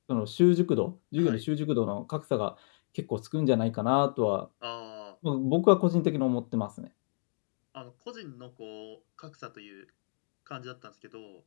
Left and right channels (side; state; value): right; silent; digital silence